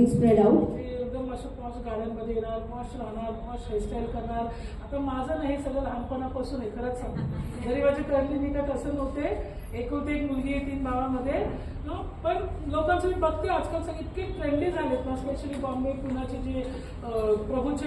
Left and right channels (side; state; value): both; identical; correlation 1.00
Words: spread out. ते एकदम असं पॉश गाड्यांमध्ये येणार, पॉश राहणार, पॉश हेअरस्टाईल करणार. आता माझं नाही, सगळं लहानपणापासून आहे खरंच सांगतो. जरी माझी करली मी का तसं नव्हते, एकुलती एक मुलगी आहे 3 भावामध्ये. पण लोकांचं मी बघते आजकाल सगळे इतके ट्रेंडी झालेत ना, स्पेशली बॉम्बे पुण्याचे जे